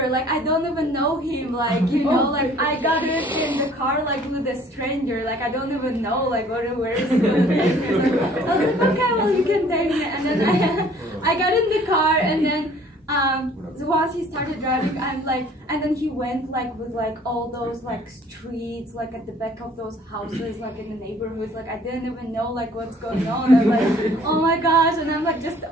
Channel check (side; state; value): both; normal; correlation 0.55